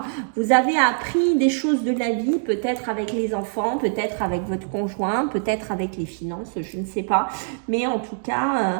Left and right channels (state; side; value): silent; left; digital silence